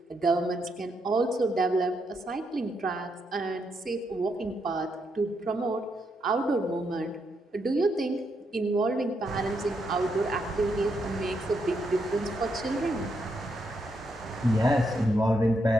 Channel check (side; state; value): both; normal; correlation 0.79